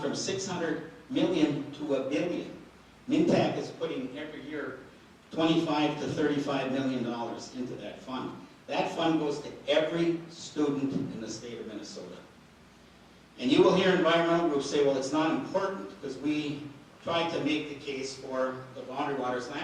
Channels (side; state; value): both; identical; correlation 1.00